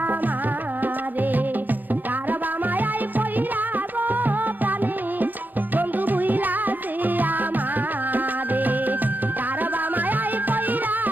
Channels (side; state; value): left; late; 0.086 ms